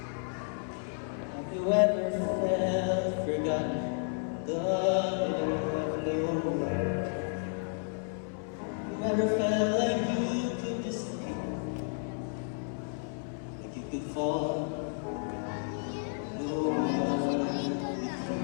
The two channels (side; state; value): right; silent; 56 dB below the other